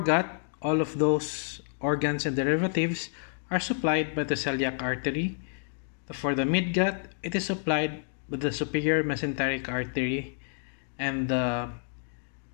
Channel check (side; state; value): right; silent; digital silence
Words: all of those organs and derivatives are supplied by the celiac artery. For the midgut, it is supplied by the superior mesenteric artery, and the